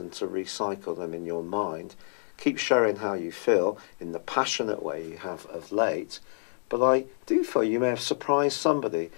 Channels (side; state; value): right; silent; digital silence